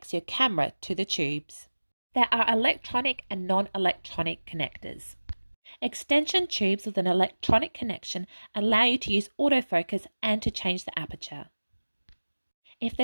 your camera to the tubes. There are electronic and non-electronic connectors. Extension tubes with an electronic connection allow you to use autofocus and to change the aperture. If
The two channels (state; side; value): inverted; both; correlation -1.00